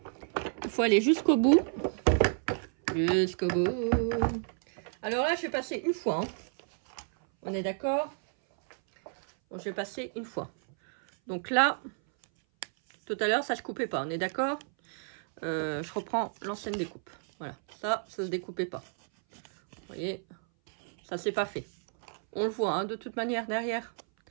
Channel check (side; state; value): left; silent; 57 dB below the other